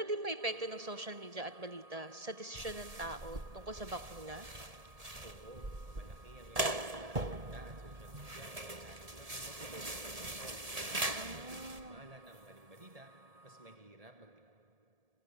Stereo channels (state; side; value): late; left; 1.7 ms